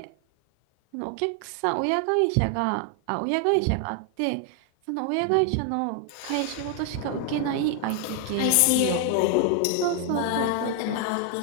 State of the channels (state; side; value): different; both; correlation 0.00